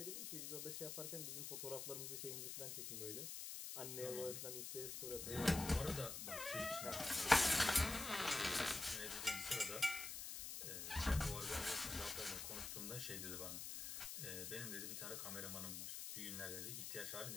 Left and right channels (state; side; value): noise; left; hiss, 5 dB below the sound